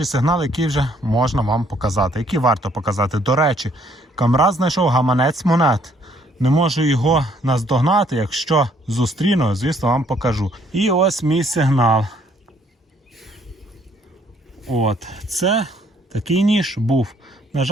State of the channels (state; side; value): normal; both; correlation 0.65